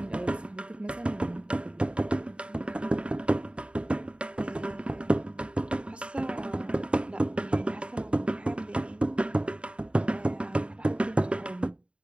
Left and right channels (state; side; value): late; left; 0.057 ms